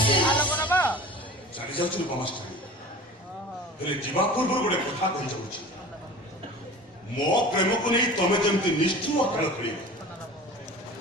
ଚାଲି ଯାଉଛି ରୂପମାଷ୍ଟାରୀ, ହେଲେ ଯିବା ପୂର୍ବରୁ ଗୋଟେ କଥା କହିଯାଉଛି। ମୋ ପ୍ରେମକୁ ନେଇ ତମେ ଯେମିତି ନିଷ୍ଠୁର ଖେଳ ଖେଳିବ,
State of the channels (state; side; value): normal; both; correlation 0.39